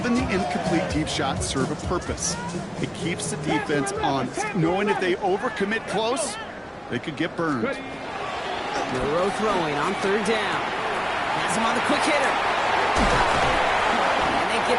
the incomplete deep shots serve a purpose. It keeps the defense honest, knowing if they overcommit close, they could get burned. Milroe throwing on third down. Has him on the quick hitter. And they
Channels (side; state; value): both; identical; correlation 1.00